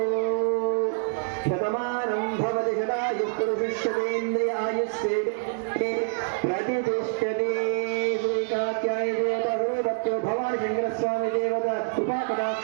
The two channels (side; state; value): left; silent; digital silence